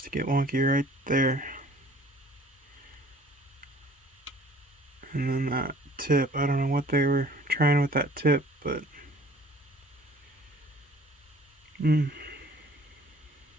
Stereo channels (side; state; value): both; normal; correlation 0.52